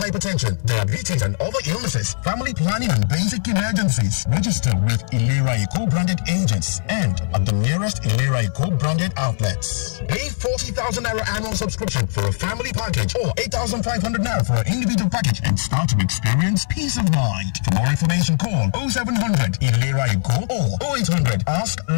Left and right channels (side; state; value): right; silent; digital silence